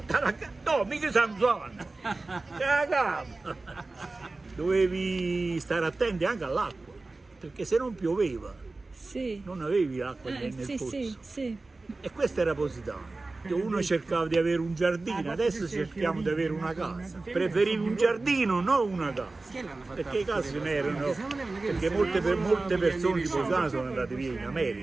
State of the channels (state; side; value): quieter; left; 3.4 dB